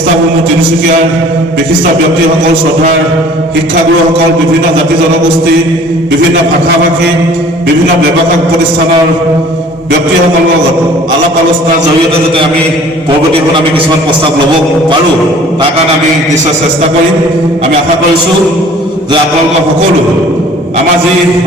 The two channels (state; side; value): normal; both; correlation 0.50